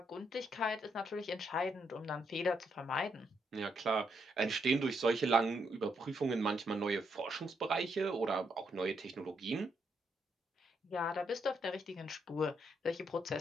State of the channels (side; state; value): both; normal; correlation 0.77